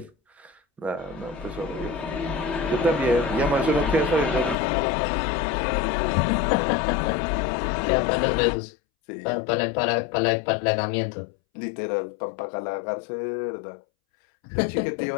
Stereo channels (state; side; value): drops out; right; at 4.5 s